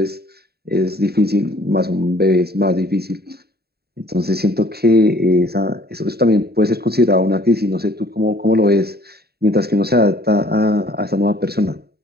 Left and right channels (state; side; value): late; left; 0.46 ms